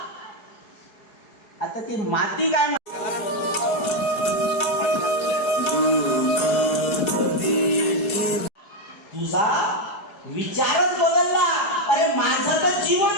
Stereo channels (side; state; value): right; late; 4.7 ms